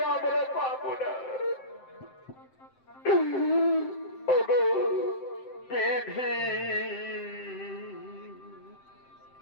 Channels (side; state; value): right; late; 7.7 ms